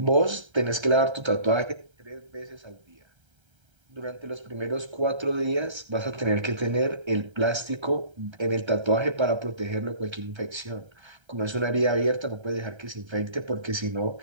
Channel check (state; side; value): late; left; 1.3 ms